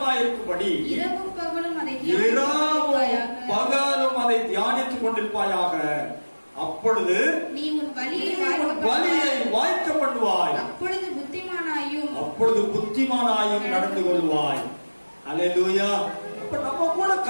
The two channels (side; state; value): both; inverted; correlation -1.00